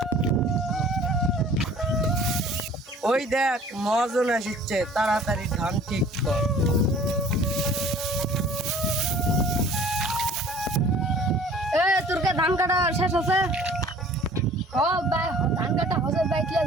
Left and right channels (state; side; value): normal; both; correlation 0.50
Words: ওই দেখ মহাজন আসছে, তাড়াতাড়ি ধান ঠিক কর। তোর কে ধান কাটা শেষ আছে? ভাই ধান কাটা হচ্ছে ভাই, কি